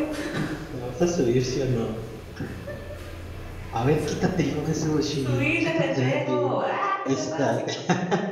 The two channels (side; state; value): both; identical; correlation 1.00